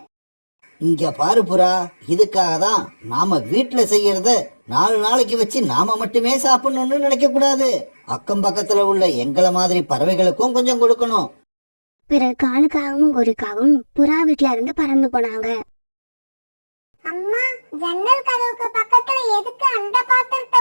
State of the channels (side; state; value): both; inverted; correlation -1.00